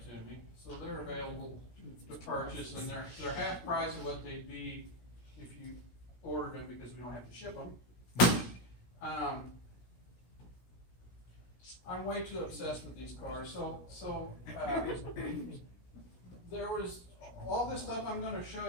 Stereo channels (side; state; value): right; late; 17 ms